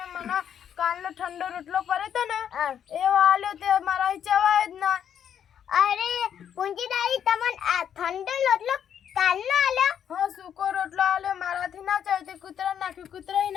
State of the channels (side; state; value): right; quieter; 8.9 dB